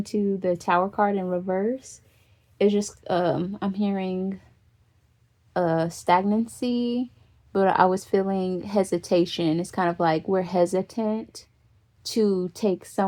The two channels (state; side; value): identical; both; correlation 1.00